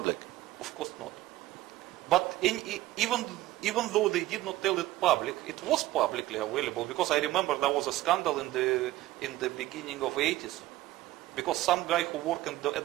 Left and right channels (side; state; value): left; quieter; 16.1 dB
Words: Of course not. But even though they did not tell it public, it was publicly available, because I remember there was a scandal in the beginning of 80s, because some guy who worked